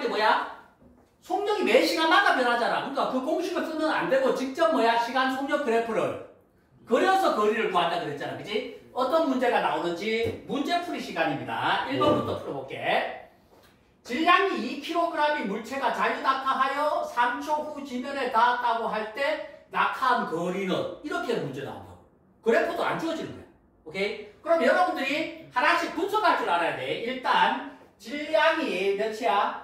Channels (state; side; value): identical; both; correlation 1.00